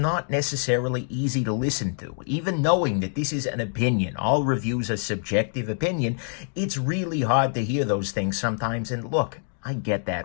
necessarily easy to listen to. Even knowing that this is an opinion, all reviews are subjective opinion, it's really hard to hear those things sometimes. And look, I get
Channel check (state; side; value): silent; right; 58 dB below the other